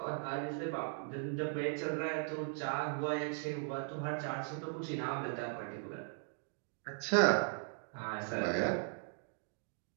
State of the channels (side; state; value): left; silent; 52 dB below the other